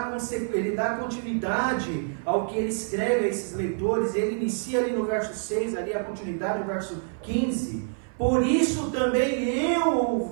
continuidade ao que ele escreve a esses leitores. Ele inicia ali no verso 6, ali a continuidade no verso 15. Por isso também eu,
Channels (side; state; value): left; silent; 57 dB below the other